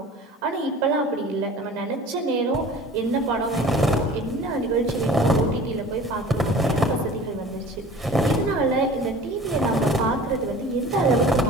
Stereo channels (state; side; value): normal; both; correlation 0.43